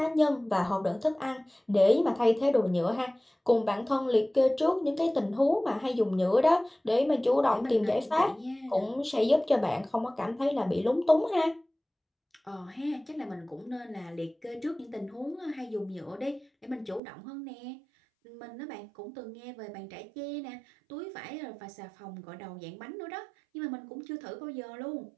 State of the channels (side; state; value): left; drops out; at 17.0 s